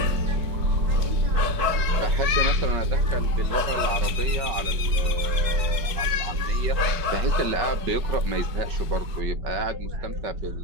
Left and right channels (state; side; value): late; left; 4.7 ms